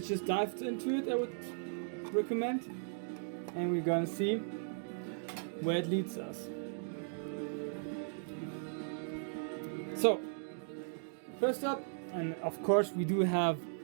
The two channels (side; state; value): left; silent; digital silence